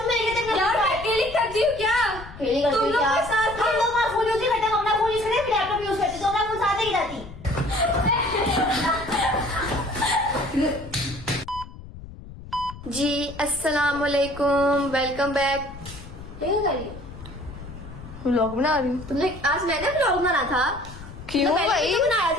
मेरे तक यार मैं अकेली करती हूँ क्या? खेली करती तुम लोग क्या? के साथ हम लोग वहाँ फोन यूज नहीं करते, हम अपना फोन यूज करते हैं, फिर लैपटॉप यूज करते, तो अपना फोन साथ ही जाती। जी अस्सलाम वालेकुम, वेलकम बैक। क्या कर रही हो? व्लॉग बना रही हूँ। तुमने आज मैंने ब्लॉग बनाना था। क्यों तो पहले भाई? तो बनाया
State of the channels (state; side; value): noise; left; rumble, 15 dB below the sound